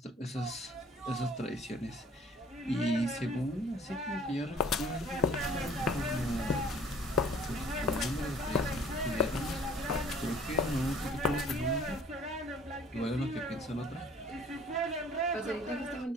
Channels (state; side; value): normal; both; correlation 0.52